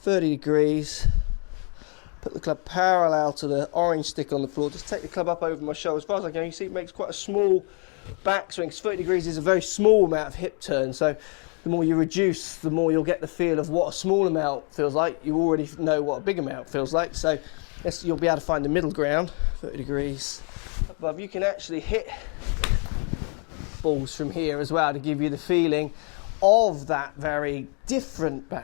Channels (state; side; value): quieter; right; 37.6 dB